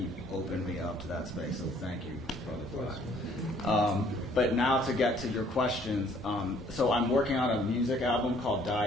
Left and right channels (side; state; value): both; normal; correlation 0.60